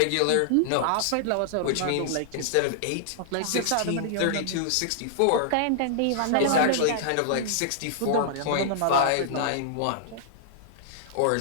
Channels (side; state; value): both; different; correlation -0.01